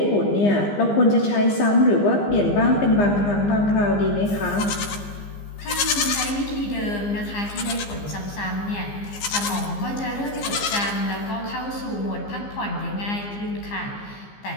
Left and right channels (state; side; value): late; right; 15 ms